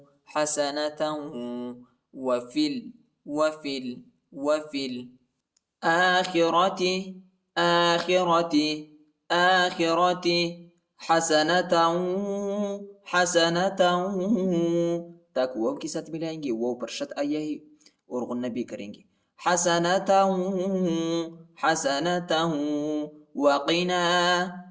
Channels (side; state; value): both; identical; correlation 1.00